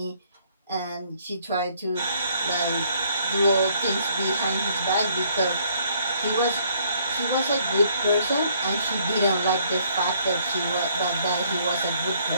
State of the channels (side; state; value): both; inverted; correlation -0.65